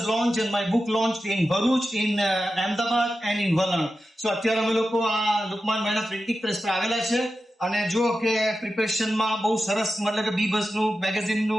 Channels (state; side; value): normal; both; correlation 0.92